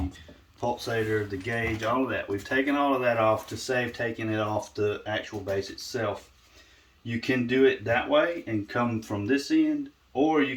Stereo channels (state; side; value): identical; both; correlation 1.00